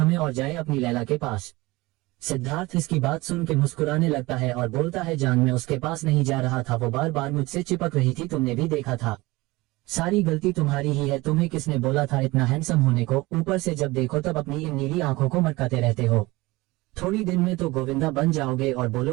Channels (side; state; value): left; quieter; 21.3 dB